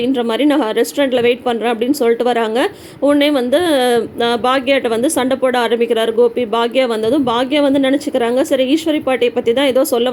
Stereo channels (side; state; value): both; identical; correlation 1.00